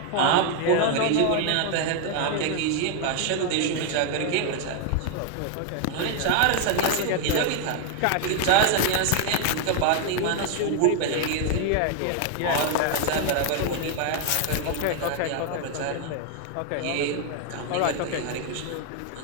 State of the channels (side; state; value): both; different; correlation 0.00